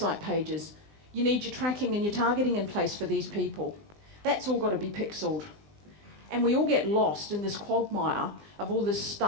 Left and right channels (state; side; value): late; left; 20 ms